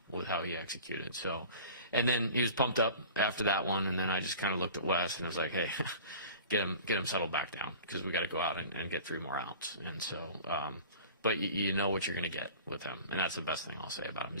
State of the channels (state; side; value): inverted; both; correlation -0.42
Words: with how he executed. So, and then he was pumped up after that one, and then I just kind of looked at Wes and I was like, hey, get him settled back down because we got to go out and get 3 more outs. And so. But you know what you're going to get with him, and that's the best thing I'll say about him